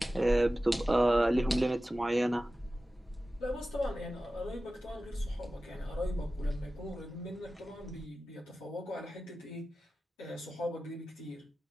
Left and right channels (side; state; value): both; normal; correlation 0.95